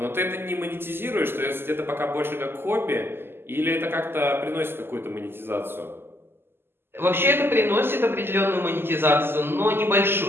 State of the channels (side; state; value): left; late; 0.11 ms